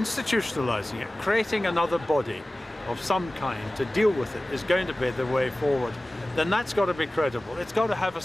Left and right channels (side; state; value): both; normal; correlation 0.97